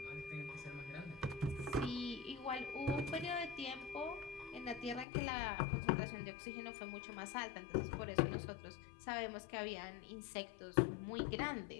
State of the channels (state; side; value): drops out; right; at 5.1 s